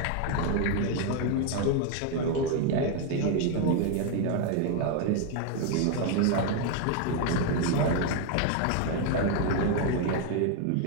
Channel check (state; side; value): different; both; correlation 0.01